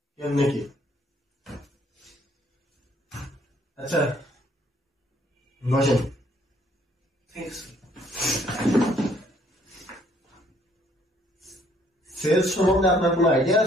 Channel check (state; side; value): normal; both; correlation 0.64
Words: কেমনে কি? আচ্ছা বসেন। সেলস সম্বন্ধে আপনার কোনো আইডিয়া